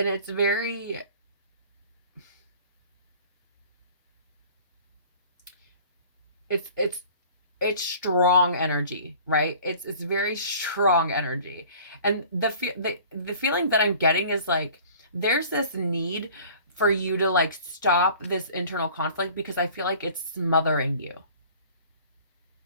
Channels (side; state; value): both; inverted; correlation -0.47